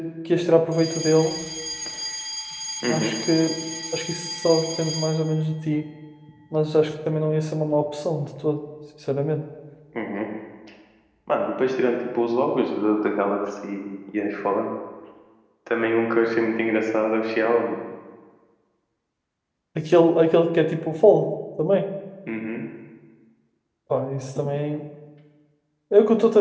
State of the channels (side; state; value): both; identical; correlation 1.00